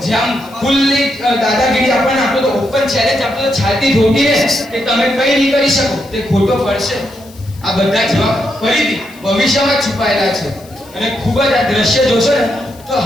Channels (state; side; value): noise; left; hiss, 24 dB below the sound